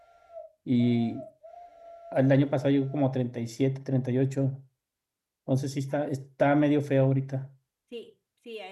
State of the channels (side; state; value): both; identical; correlation 1.00